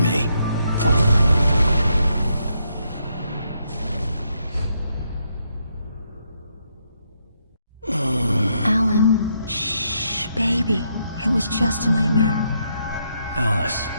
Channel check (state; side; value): inverted; both; correlation -0.77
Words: Alan, shh, baby. It was just a nightmare. Alice.